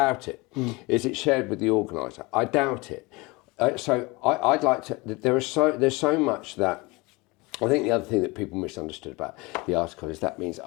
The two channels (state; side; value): quieter; right; 24.6 dB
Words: it. Is it shared with the organiser? I doubt it. So I'd like to... There's so much that... I think the other thing that people misunderstood about the article is that means,